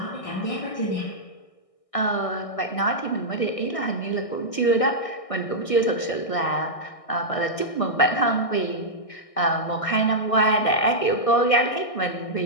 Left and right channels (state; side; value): late; right; 1.6 ms